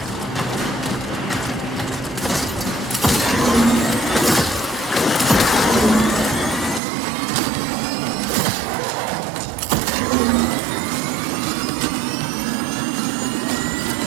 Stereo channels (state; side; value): drops out; left; at 6.8 s